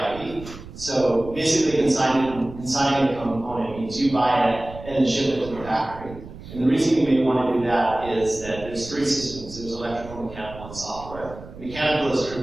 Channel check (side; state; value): right; noise; rumble, 15 dB below the sound